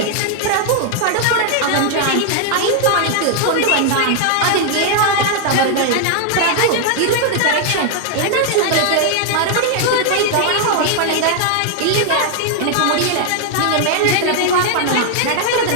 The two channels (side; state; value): both; different; correlation 0.00